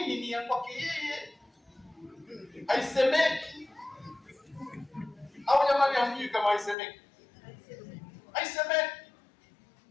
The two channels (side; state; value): right; drops out; at 6.8 s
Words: ni ya kwake yeye, haisemeki. Au jamani hamjui kama haisemeki? Haisemeki.